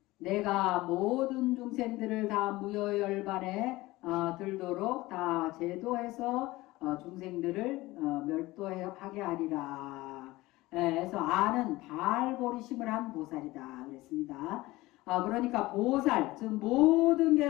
내가 모든 중생들을 다 무여열반에 들도록 다 제도해서 중생들을 멸도하게 하리라. 그래서 아는 발보리심을 한 보살이다 그랬습니다. 그러니까 보살, 즉 모든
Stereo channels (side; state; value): right; quieter; 19.2 dB